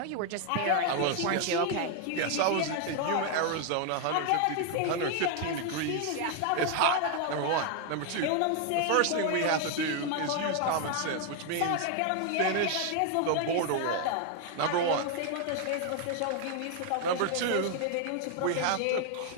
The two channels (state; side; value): different; both; correlation 0.00